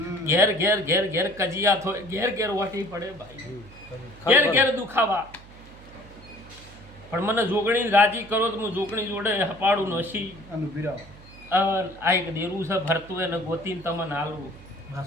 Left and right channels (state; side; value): noise; right; hum, 21 dB below the sound